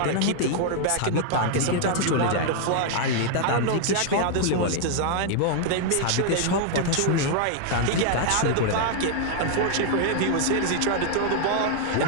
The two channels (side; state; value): both; different; correlation 0.00